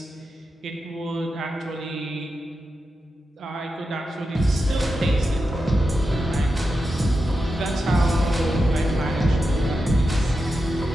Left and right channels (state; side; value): normal; both; correlation 0.89